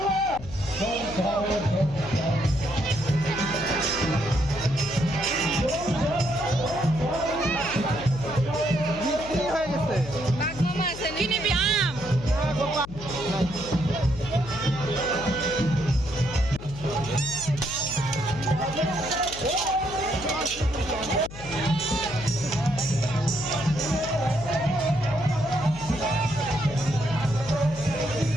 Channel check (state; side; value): noise; left; hum, 13 dB below the sound